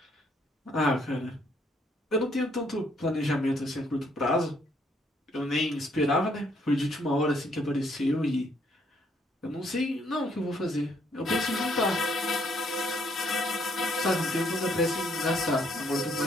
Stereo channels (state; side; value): normal; both; correlation 0.69